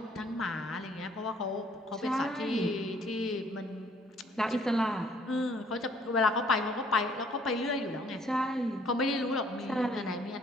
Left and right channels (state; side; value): normal; both; correlation 0.61